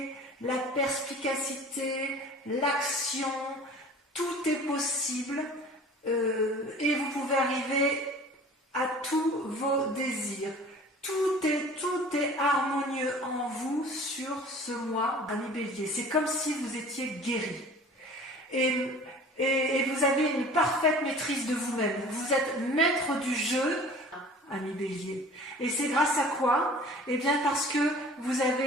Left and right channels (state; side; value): normal; both; correlation 0.44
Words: la perspicacité, l'action, tout est possible et vous pouvez arriver à tous vos désirs. Tout est harmonieux en vous sur ce mois, ami Bélier. C'est comme si vous étiez guéri. Et vous avez une parfaite maîtrise de vous-même. Vous êtes maître du jeu, ami Bélier. Et c'est grâce à quoi? Eh bien parce que vous